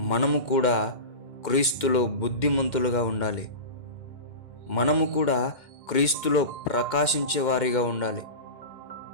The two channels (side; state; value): right; late; 2.1 ms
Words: మనము కూడా క్రీస్తులో బుద్ధిమంతులుగా ఉండాలి. మనము కూడా క్రీస్తులో ప్రకాశించే వారిగా ఉండాలి.